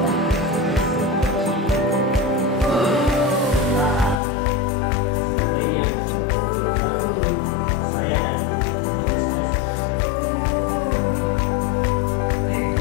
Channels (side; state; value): right; drops out; at 4.2 s